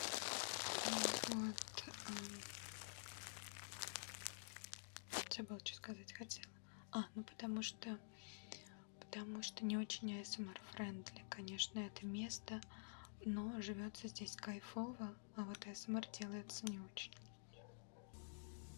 Вот. Забыла, что сказать хотела. Ну потому что не очень ASMR-френдли, конечно, это место, но живется здесь кайфово, а вот ASMR делается не очень.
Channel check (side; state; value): right; silent; digital silence